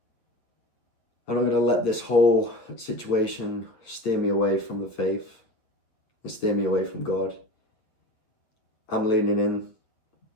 this whole situation steer me away from the faith and steer me away from God. I'm leaning in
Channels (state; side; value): late; right; 8.7 ms